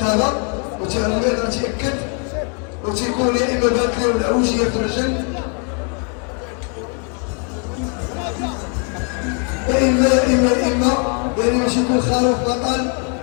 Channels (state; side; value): quieter; right; 37.7 dB